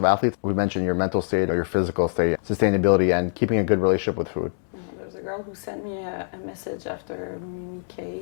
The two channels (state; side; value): silent; right; 62 dB below the other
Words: athletes. We mentioned your mental state or your physical state, sustainability, and keeping a good relationship with food. There's a girl who sent me a message after Mimi